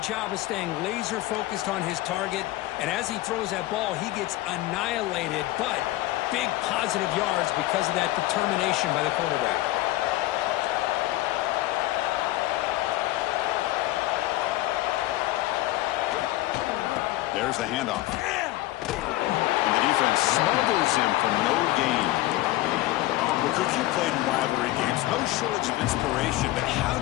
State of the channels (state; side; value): quieter; right; 17.0 dB